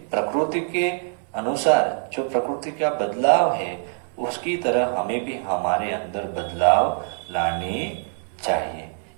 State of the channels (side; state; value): left; silent; 60 dB below the other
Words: प्रकृति के अनुसार जो प्रकृति का बदलाव है उसकी तरह हमें भी हमारे अंदर बदलाव लाने चाहिए।